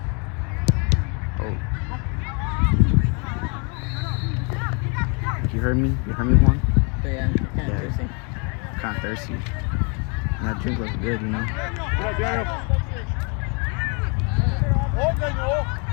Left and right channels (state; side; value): quieter; right; 35.3 dB